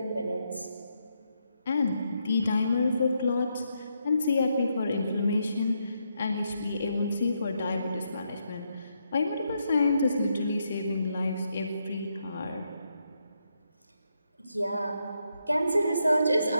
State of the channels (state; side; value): inverted; both; correlation -0.80